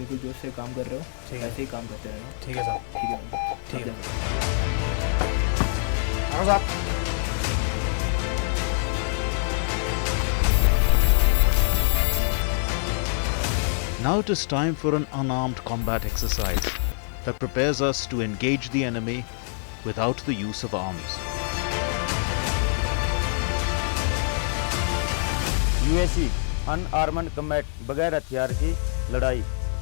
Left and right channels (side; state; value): right; silent; 62 dB below the other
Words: जोश से काम कर रहे हो ऐसे ही काम करते रहना। ठीक है साहब। ठीक है मंजित, ठीक है साहब। Now it is time for an unarmed combat exercise that prepares us to engage the enemy without the use of arms. UAC unarmed combat, बगैर हथियार की लड़ाई।